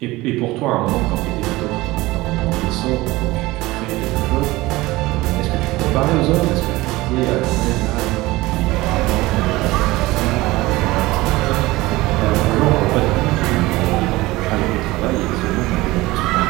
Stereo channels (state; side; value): quieter; left; 19.7 dB